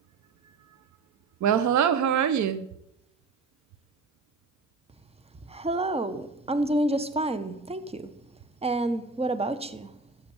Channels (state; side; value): quieter; left; 4.4 dB